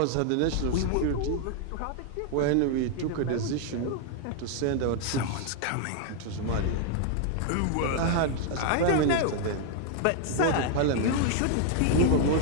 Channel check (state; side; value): different; both; correlation 0.00